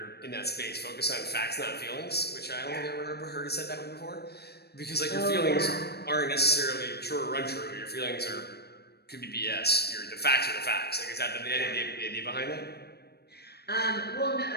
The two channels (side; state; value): right; late; 0.47 ms